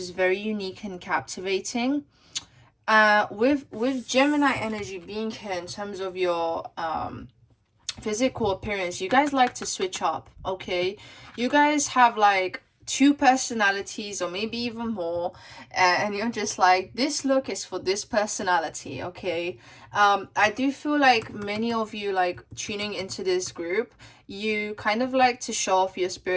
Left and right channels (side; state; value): both; identical; correlation 1.00